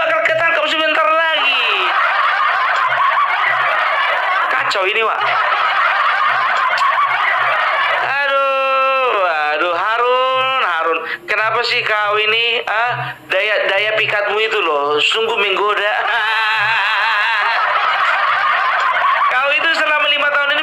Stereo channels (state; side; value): identical; both; correlation 1.00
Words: ketangkap sebentar lagi. Kacau ini, Wak. Kenapa sih kau ini daya pikatmu itu loh sungguh menggoda. Kau itu selama 5 tahun ini